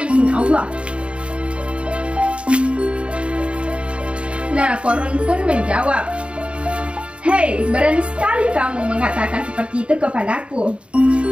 izin Allah. Nah, Qarun pun menjawab, hei, berani sekali kamu mengatakan seperti itu kepadaku.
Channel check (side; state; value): left; late; 0.058 ms